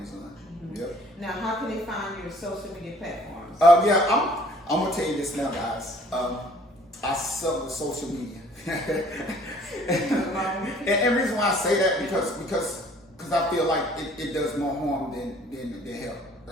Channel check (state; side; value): normal; both; correlation 0.56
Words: Mm-hmm. Yep. Now, how can they find your social media platforms? I'm going to tell you this now, guys. I suck with social media. and reason why I say that because I feel like it does more harm than help.